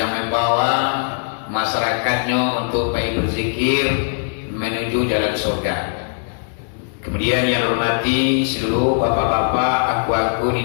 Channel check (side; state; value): right; silent; digital silence